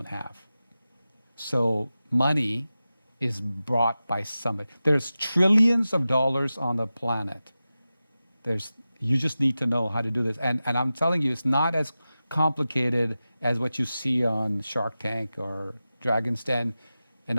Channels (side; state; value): both; inverted; correlation -0.94